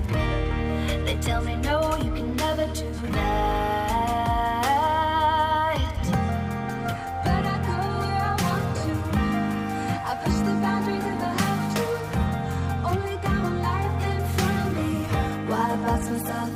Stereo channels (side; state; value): both; identical; correlation 1.00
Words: They tell me no, you can never do that. But I go where I want to. I push the boundaries if I have to. Only got one life in front of me. Why box